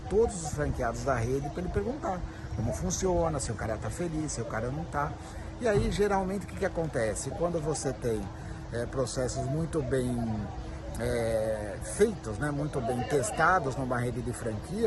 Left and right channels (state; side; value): identical; both; correlation 1.00